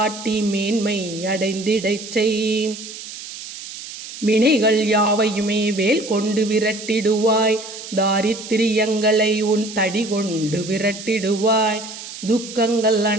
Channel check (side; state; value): right; noise; hiss, 12 dB below the sound